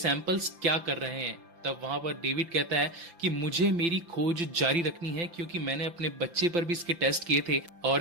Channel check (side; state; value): left; late; 5.9 ms